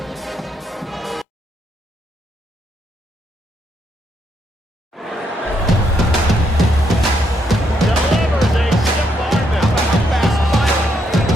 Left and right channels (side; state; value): both; normal; correlation 0.76